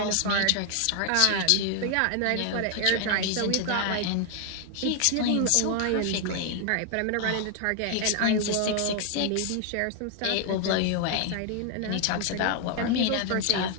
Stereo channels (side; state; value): both; different; correlation 0.00